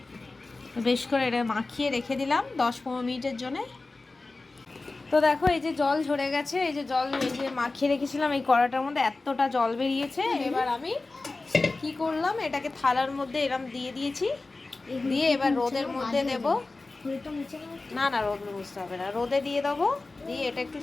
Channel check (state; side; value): quieter; right; 3.4 dB